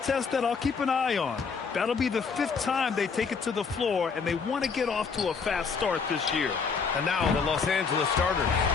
that I'll keep an eye on. That'll be the 5th time they take it to the floor, and they want to get off to a fast start this year. And now the Los Angeles starters.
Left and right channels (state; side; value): quieter; right; 5.4 dB